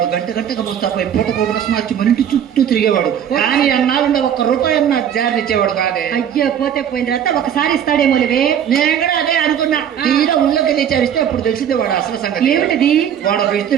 గంటగా ముస్తాపై పూట కోట మార్చి మన ఇంటి చుట్టూ తిరిగేవాడు. కానీ అన్నాళ్ళుండ ఒక్క రూపాయి అన్న జారి ఇచ్చేవాడు కాదే. అయ్యో, పోతే పోయిన తర్వాత ఒకసారి ఇస్తాడేమో లేవే. నేను కూడా అదే అనుకున్నా. తీరా ఊళ్ళోకి తెచ్చారిస్తే అప్పుడు తెలిసిందే వాడు అసలు సంగతి. ఏమిటది? వాడు ఒక ఇస్త్రీ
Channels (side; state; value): left; quieter; 9.2 dB